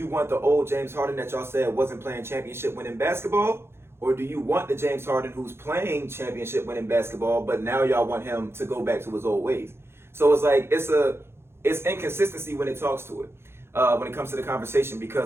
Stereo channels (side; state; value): left; late; 0.12 ms